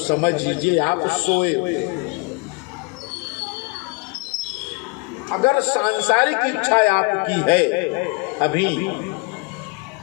लीजिए आप सोए हुए। अगर सांसारिक इच्छा आपकी है अभी,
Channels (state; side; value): quieter; right; 30.9 dB